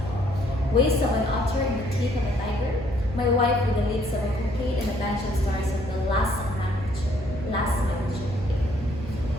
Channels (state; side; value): noise; right; hum, 10 dB below the sound